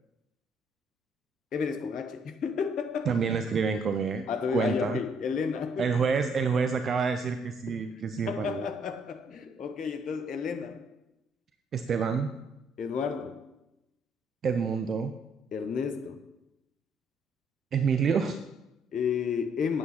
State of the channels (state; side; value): normal; both; correlation 0.67